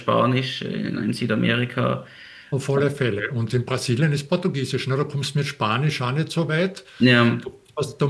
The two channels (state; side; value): identical; both; correlation 1.00